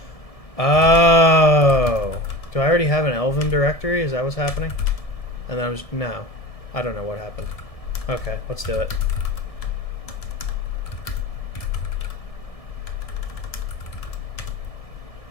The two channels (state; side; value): late; right; 1.7 ms